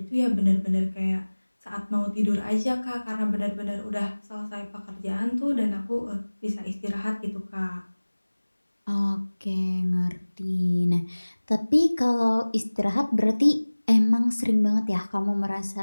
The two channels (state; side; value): inverted; both; correlation -1.00